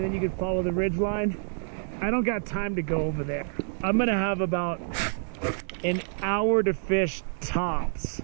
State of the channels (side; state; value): left; silent; 60 dB below the other